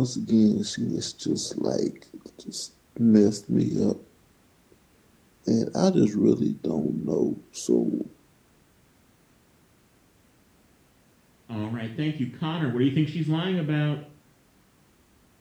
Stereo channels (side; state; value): both; identical; correlation 1.00